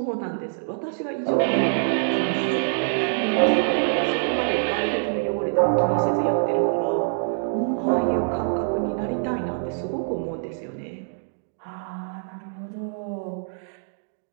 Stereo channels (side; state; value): left; silent; digital silence